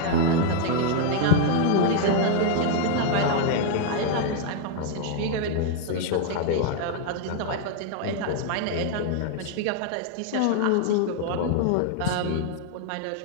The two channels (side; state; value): both; different; correlation 0.00